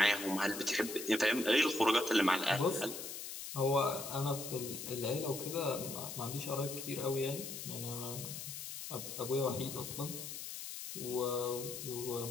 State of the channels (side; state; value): left; noise; hiss, 8 dB below the sound